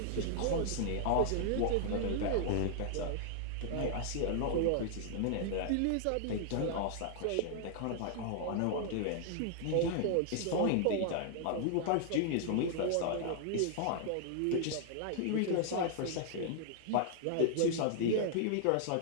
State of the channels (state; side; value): different; both; correlation -0.01